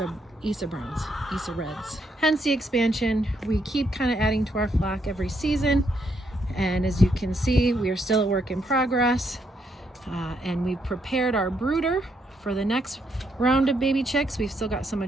Browns, Isa Reds. Hence the expansion. We keep kind of adding to our flock every season. And as you can see, we are still a work in progress. And we've prepared our brooder for the next round of baby chicks. We've still got some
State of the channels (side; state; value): both; normal; correlation 0.76